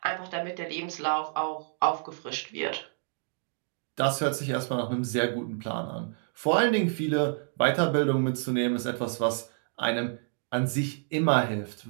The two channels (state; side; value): silent; left; digital silence